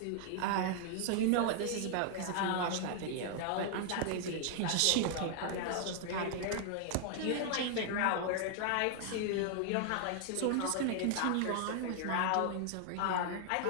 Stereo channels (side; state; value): both; different; correlation 0.00